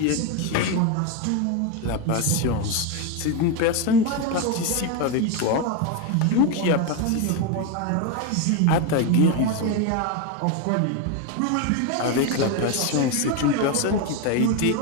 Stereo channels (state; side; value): different; both; correlation 0.02